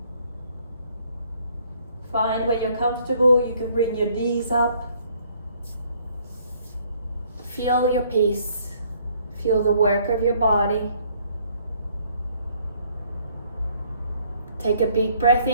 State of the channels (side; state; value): both; inverted; correlation -0.63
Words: Find where you're comfortable. You can bring your knees up. Feel your peace. Feel the work of your body. Take a big breath